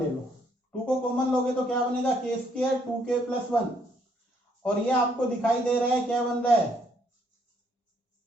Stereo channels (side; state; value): both; normal; correlation 0.69